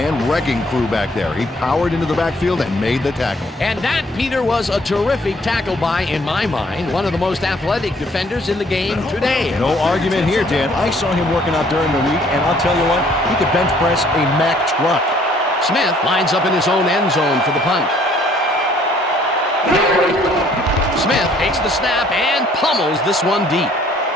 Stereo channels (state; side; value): normal; both; correlation 0.61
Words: wrecking crew back there. He powered into the backfield and made the tackle. And that, Peter, was a terrific tackle by, in my mind, one of the most athletic defenders in the game today. No argument here, Dan. I saw him working out during the week, and I'll tell you what, he could bench press a Mack truck. Smith lines up in his own end zone for the punt. Smith takes the snap and pummels this one deep.